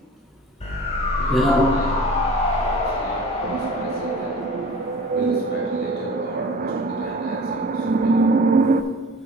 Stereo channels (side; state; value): both; normal; correlation 0.42